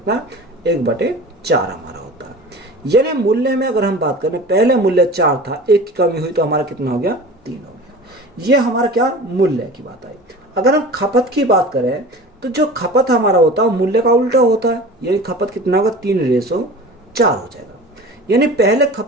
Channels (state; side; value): normal; both; correlation 0.38